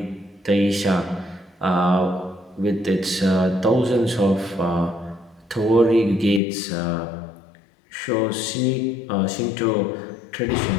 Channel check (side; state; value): right; drops out; at 6.4 s